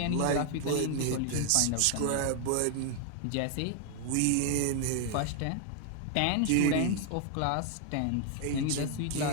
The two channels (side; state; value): both; different; correlation 0.00